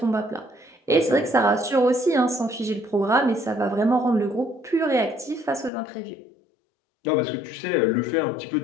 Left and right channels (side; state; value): right; drops out; at 5.7 s